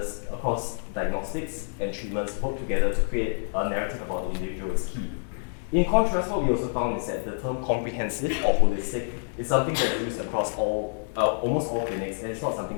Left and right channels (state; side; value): silent; right; digital silence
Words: across diagnostics and treatments work together to create a narrative about the individual is key. In contrast, what we also found is that the term comprehensive or holistic is something that's used across almost all clinics, and it's not